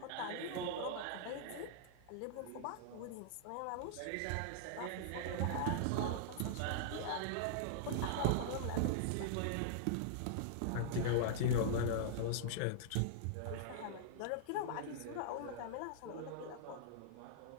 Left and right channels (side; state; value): both; different; correlation -0.02